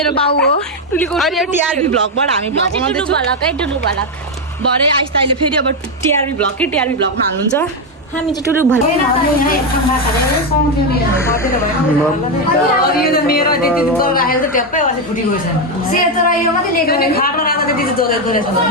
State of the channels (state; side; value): normal; both; correlation 0.06